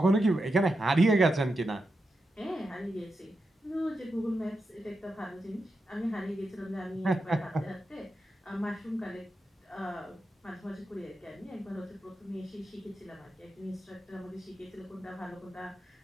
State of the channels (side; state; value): both; normal; correlation 0.88